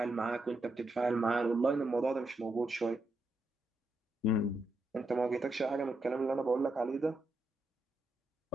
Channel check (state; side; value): normal; both; correlation 0.83